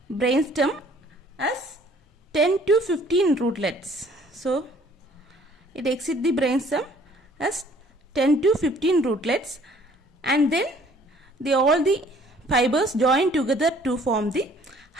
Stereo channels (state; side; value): normal; both; correlation 0.57